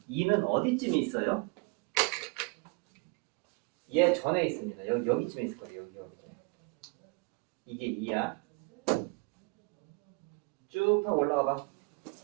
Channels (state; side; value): quieter; left; 29.5 dB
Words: 2는 어디쯤에 있어요? 얘 전에 있습니다. 여기쯤에 있을 거예요. 여기쯤에. 이게 2야. 쭉 하고 올라가봐.